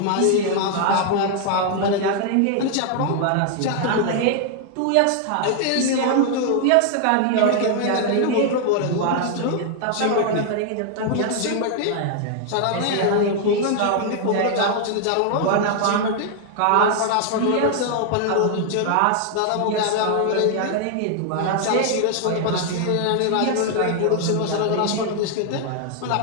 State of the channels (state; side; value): different; both; correlation 0.00